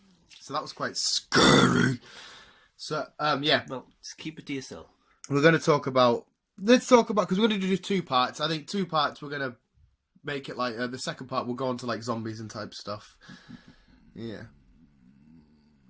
So that was quite scary. So, yeah. Well, just keep it to yourself. We're going to talk about... Let's talk about... Because we're going to do 2 parts. I think 2 parts we're going to make it like... the second part we'll go on to like zombies and type stuff. Yeah.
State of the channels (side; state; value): both; identical; correlation 1.00